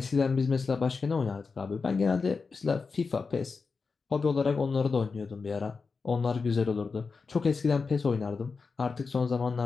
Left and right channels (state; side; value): quieter; right; 4.7 dB